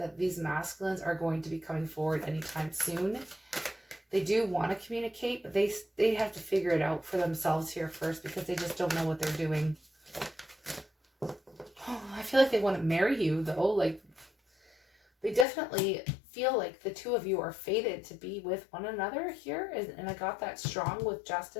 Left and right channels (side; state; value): right; drops out; at 15.5 s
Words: these masculines are going to be coming forward anytime soon. They do want to communicate, but they have to figure it out for themselves here first, because they just don't know what they're doing. Oh, I feel like they want to marry you, though. Like, they definitely feel like the two of you are fated to be with one another here. And I got that strong with